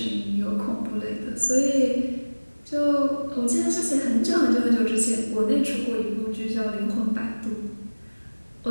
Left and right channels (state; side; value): inverted; both; correlation -1.00